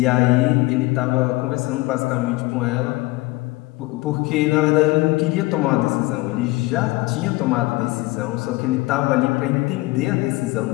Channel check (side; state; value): right; quieter; 21.3 dB